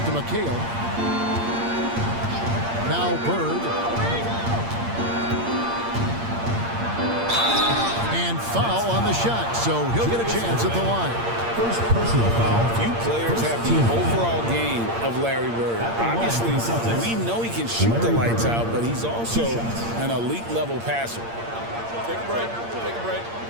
to McHale. Now Bird. And foul on the shot, so he'll get a chance at the line. First personal foul. Few players have the overall game of Larry Bird. Obviously, we know he can shoot the lights out, but he's also an elite level passer. Take a break. Take a break.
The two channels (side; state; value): left; late; 8.7 ms